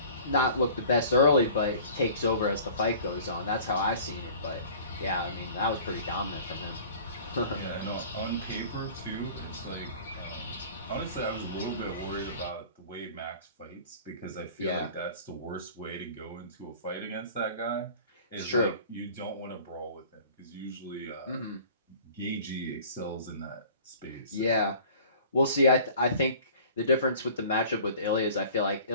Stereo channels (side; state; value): both; inverted; correlation -0.46